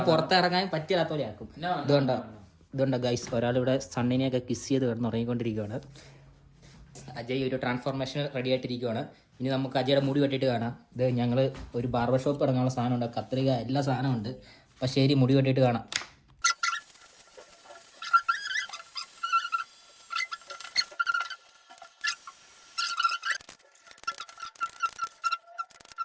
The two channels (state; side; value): identical; both; correlation 1.00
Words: പുറത്തിറങ്ങാൻ പറ്റാത്ത പോലെ ആക്കും. ഇതുകൊണ്ടോ ഗൈസ്, ഒരാളിവിടെ സണ്ണിനെയൊക്കെ കിസ് ചെയ്ത് കിടന്ന് ഉറങ്ങിക്കൊണ്ടിരിക്കുകയാണ്. അജയ് ഒരു ട്രാൻസ്ഫോർമേഷൻ റെഡി ആയിട്ടിരിക്കുകയാണ്. ഇനി നമുക്ക് അജയുടെ മുടി വെട്ടിയിട്ട് കാണാം. ഇത് ഞങ്ങൾ ഒരു ബാർബർ ഷോപ്പ് ഇറങ്ങാനുള്ള സാധനമുണ്ട്, കത്രിക എല്ലാ സാധനമുണ്ട്. അപ്പം ശരി, മുടി വെട്ടിയിട്ട് കാണാം.